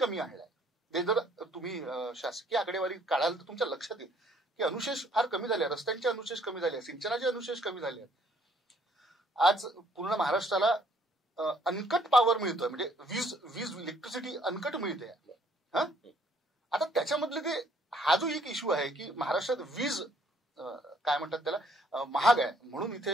आणलाय. ते जर तुम्ही शासकीय आकडेवारी काढाल तर तुमच्या लक्षात येईल की अनुशेष फार कमी झाले, रस्त्यांचे अनुशेष कमी झाले, सिंचनाचे अनुशेष कमी झाले. आज पूर्ण महाराष्ट्राला अनकट पॉवर मिळतोय, म्हणजे वीज इलेक्ट्रिसिटी अनकट मिळते. आता त्याच्यामधले ते हा जो एक इश्यू आहे की महाराष्ट्रात वीज काय म्हणतात त्याला महाग आहे म्हणून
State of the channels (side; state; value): both; normal; correlation 0.63